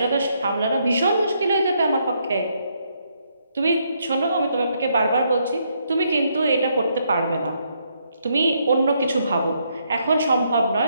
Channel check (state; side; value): inverted; both; correlation -0.75